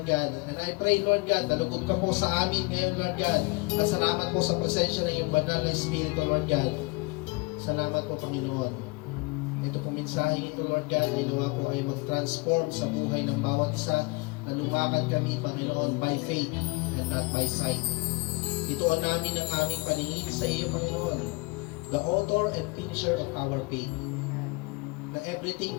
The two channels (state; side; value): quieter; right; 26.5 dB